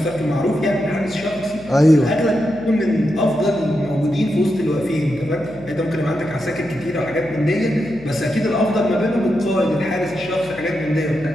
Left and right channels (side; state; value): left; noise; hum, 19 dB below the sound